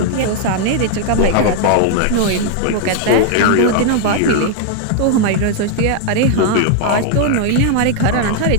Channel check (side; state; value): both; different; correlation 0.00